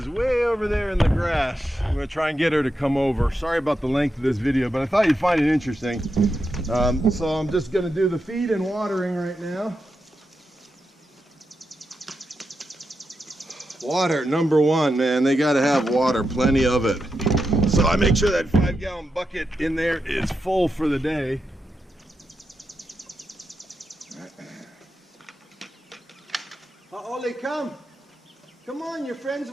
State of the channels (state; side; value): normal; both; correlation 0.87